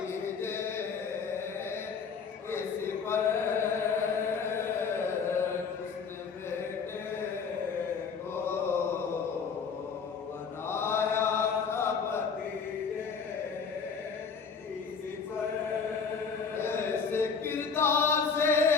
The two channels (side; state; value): right; quieter; 5.7 dB